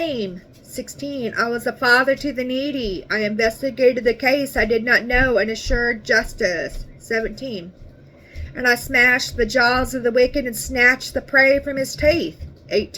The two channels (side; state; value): both; identical; correlation 1.00